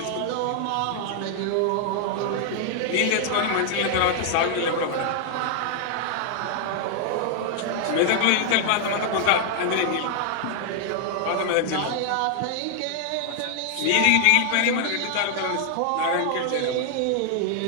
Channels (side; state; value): both; different; correlation 0.00